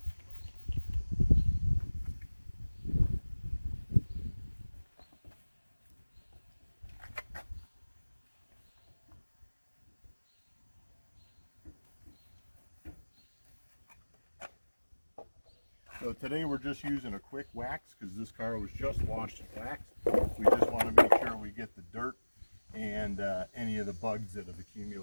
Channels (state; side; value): inverted; both; correlation -1.00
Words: So today we're just using a quick wax because this car was just washed and waxed. We just want to make sure we get the dirt and any of the bugs that have